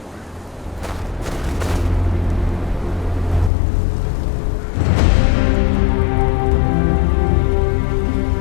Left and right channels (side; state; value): right; drops out; at 3.5 s